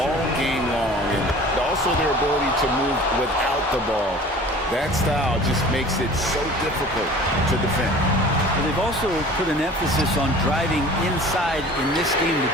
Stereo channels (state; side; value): normal; both; correlation 0.44